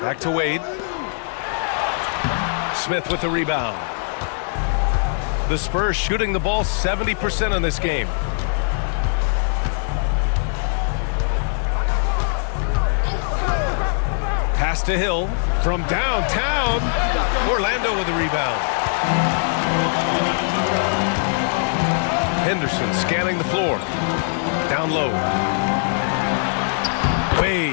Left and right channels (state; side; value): silent; right; 64 dB below the other